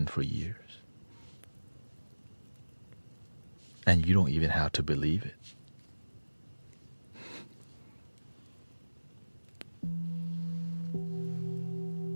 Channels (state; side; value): inverted; both; correlation -1.00